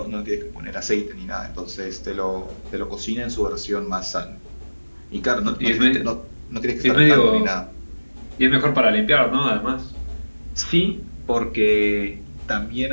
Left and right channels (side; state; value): both; inverted; correlation -1.00